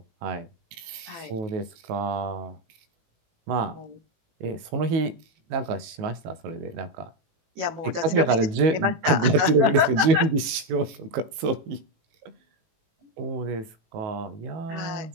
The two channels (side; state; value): left; late; 18 ms